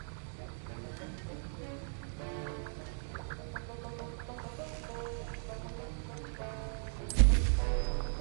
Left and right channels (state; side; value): silent; left; 53 dB below the other